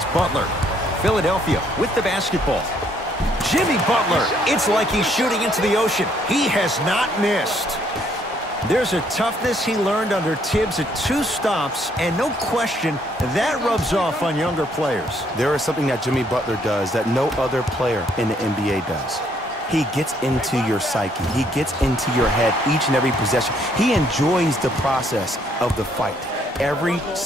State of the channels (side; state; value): both; normal; correlation 0.68